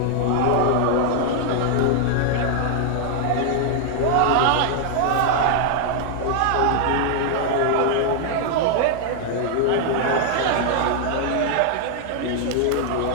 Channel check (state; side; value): different; both; correlation 0.00